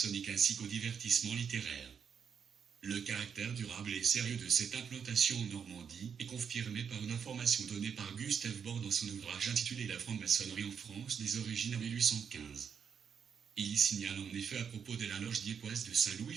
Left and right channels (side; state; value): left; quieter; 7.1 dB